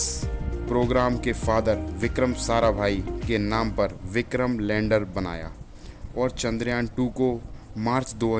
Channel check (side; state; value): both; identical; correlation 1.00